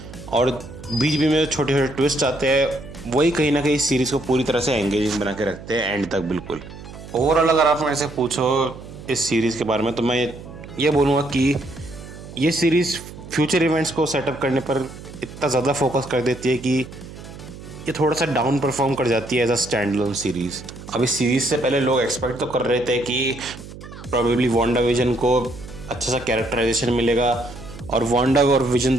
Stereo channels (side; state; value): right; noise; hum, 15 dB below the sound